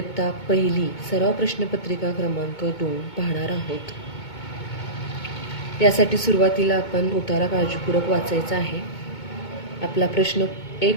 पहिली सराव प्रश्नपत्रिका क्रमांक 2 पाहणार आहोत. यासाठी सुरुवातीला आपण उतारा काळजीपूर्वक वाचायचा आहे. आपला प्रश्न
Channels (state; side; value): late; right; 2.2 ms